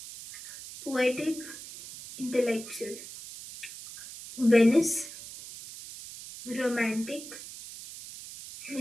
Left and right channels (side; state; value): right; noise; hiss, 13 dB below the sound